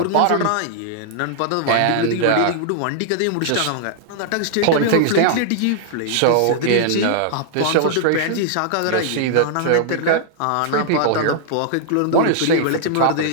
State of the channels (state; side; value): different; both; correlation -0.01